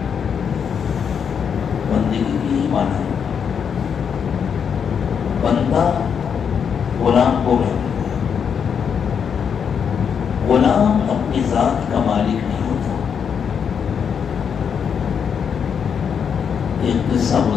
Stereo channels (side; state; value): right; quieter; 7.2 dB